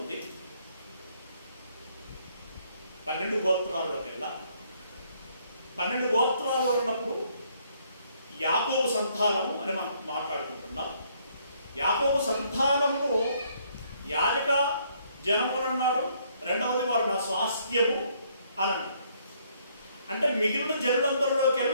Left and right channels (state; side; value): inverted; both; correlation -0.67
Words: 12 గోత్రాల్లోకెల్లా. 12 గోత్రాలు అన్నప్పుడు యాకోబు సంతానము అని మనం మాట్లాడుకుంటున్నాం. యాకోబు సంతానము యాజక జనము అన్నాడు, రెండవది వారు నా స్వాస్థ్యము అని. అంటే మిగిలిన